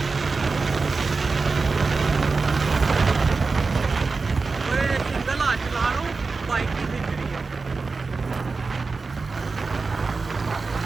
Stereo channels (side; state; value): left; quieter; 4.2 dB